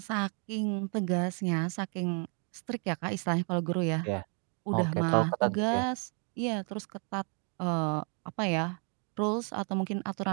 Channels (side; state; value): left; quieter; 39.7 dB